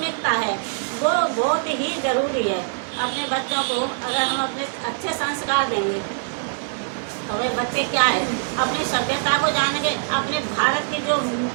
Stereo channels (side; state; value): left; silent; digital silence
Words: है, वो बहुत ही ज़रूरी है। अपने बच्चों को अगर हम अपने अच्छे संस्कार देंगे तो वे बच्चे क्या है, अपनी सभ्यता को जानेंगे। अपने भारत की जो